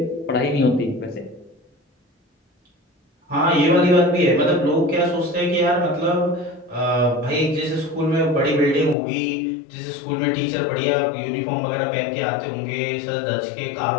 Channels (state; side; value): drops out; right; at 9.0 s